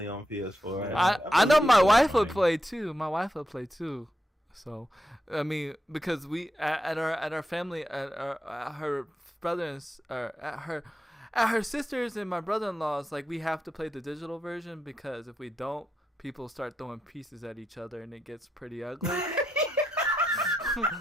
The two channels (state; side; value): normal; both; correlation 0.84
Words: on PS4. I know my believe wife that. would play too. My wife would play too. So, I mean, because we at our family at her brothers or at her sisters and my brother-in-law's, like, we have to play the digital version because if we don't, people start throwing pieces at each other and it gets pretty ugly.